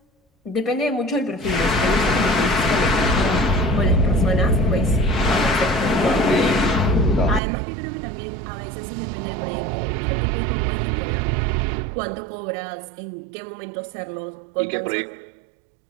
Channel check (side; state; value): left; drops out; at 7.4 s